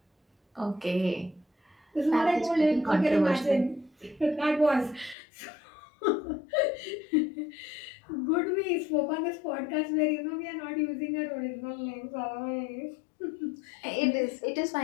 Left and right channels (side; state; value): right; drops out; at 5.2 s